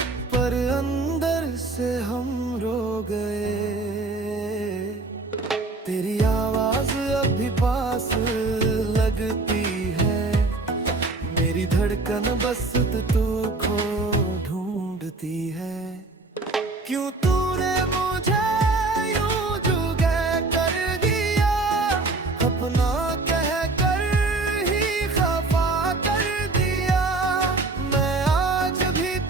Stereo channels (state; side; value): quieter; left; 3.3 dB